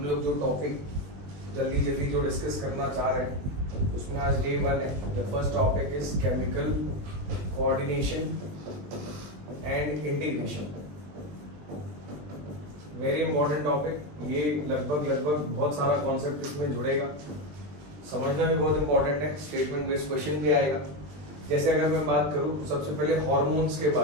लोग जो टॉपिक जल्दी जल्दी जो डिस्कस करना चाह रहे हैं उसमें आज डे 1 है। The first topic is chemical coordination and integration. Very important topic. ये लगभग बहुत सारा कॉन्सेप्ट इसमें जुड़ेगा, समझना भी बहुत इंपॉर्टेंट है। स्टेटमेंट बेस्ड क्वेश्चन भी आएगा। जैसे अगर मैं बात करूं तो सबसे पहले हार्मोन्स के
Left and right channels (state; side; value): late; left; 20 ms